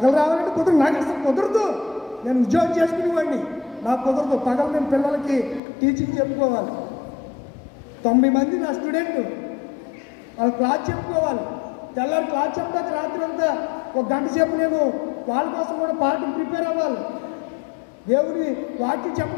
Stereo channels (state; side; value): drops out; right; at 5.6 s